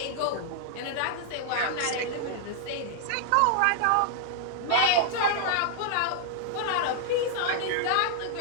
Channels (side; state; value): both; different; correlation -0.01